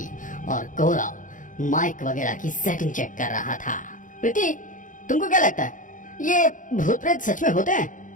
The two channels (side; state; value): right; late; 0.38 ms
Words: और गौरव माइक वगैरह की सेटिंग चेक कर रहा था। प्रीति, तुमको क्या लगता है, ये भूत प्रेत सच में होते हैं?